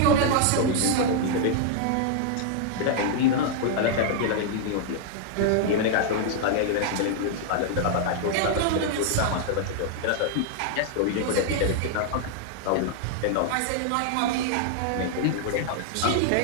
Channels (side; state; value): both; different; correlation -0.01